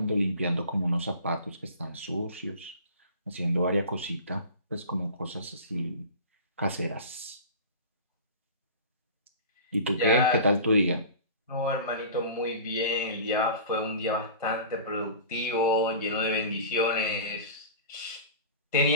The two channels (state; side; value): inverted; both; correlation -0.38